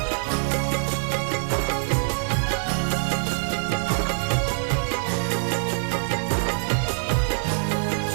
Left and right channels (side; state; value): left; silent; digital silence